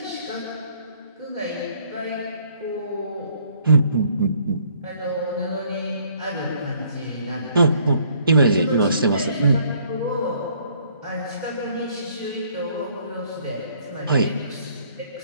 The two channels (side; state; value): both; inverted; correlation -0.63